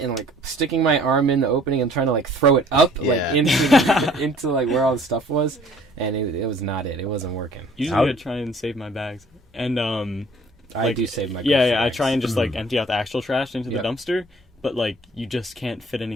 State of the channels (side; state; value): both; normal; correlation 0.54